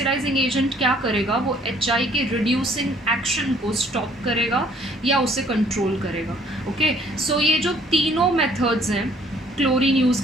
एजेंट क्या करेगा, वो HI के रिड्यूसिंग एक्शन को स्टॉप करेगा या उसे कंट्रोल करेगा. ओके, सो ये जो तीनों मेथड्स हैं, क्लोरीन यूज़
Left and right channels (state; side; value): normal; both; correlation 0.61